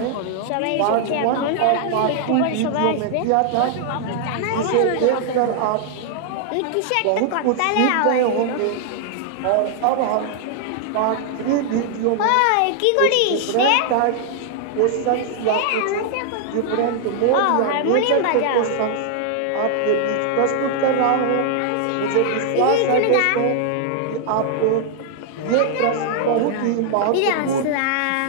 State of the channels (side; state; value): both; different; correlation -0.01